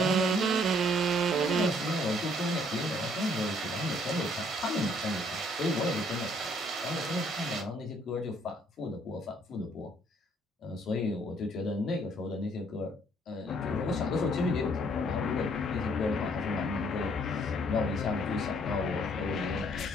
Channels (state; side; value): normal; both; correlation 0.64